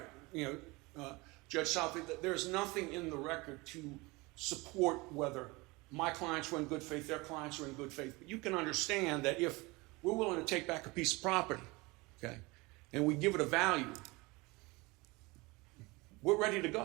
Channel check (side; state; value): left; quieter; 24.1 dB